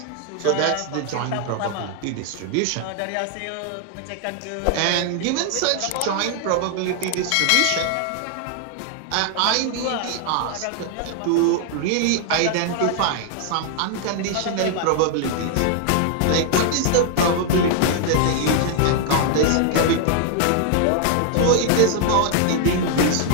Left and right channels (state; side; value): different; both; correlation 0.00